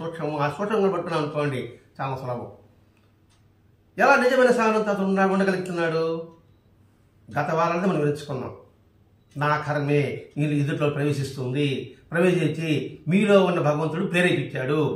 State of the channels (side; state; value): both; identical; correlation 1.00